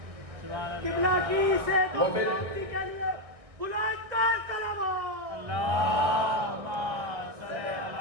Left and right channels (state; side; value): late; left; 1.5 ms